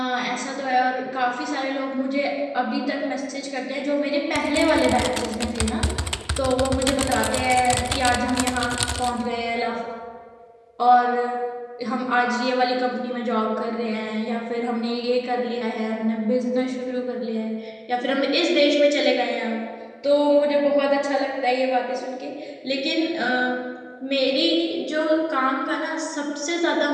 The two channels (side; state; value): both; identical; correlation 1.00